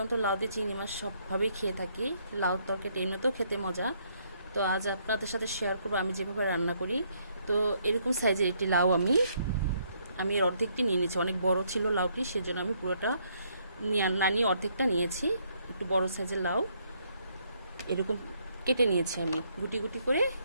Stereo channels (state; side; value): inverted; both; correlation -0.70